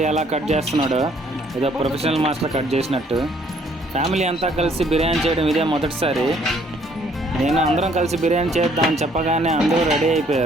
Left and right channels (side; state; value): both; normal; correlation 0.63